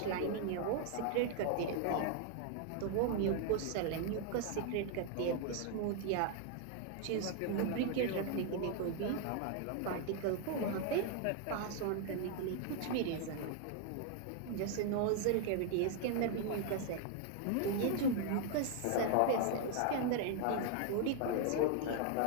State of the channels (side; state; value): both; different; correlation 0.00